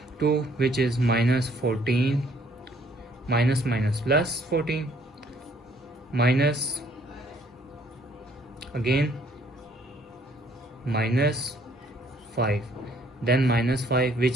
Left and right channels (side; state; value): both; normal; correlation 0.63